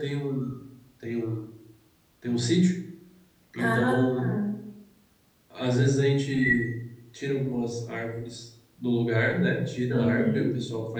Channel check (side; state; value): both; identical; correlation 1.00